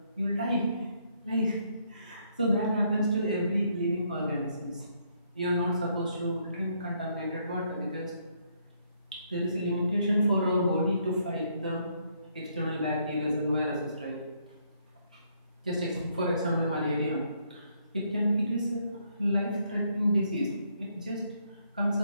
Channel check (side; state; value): both; inverted; correlation -0.71